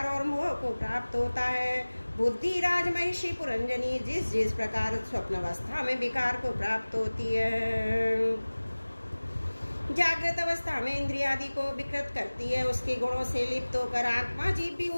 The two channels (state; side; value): inverted; both; correlation -1.00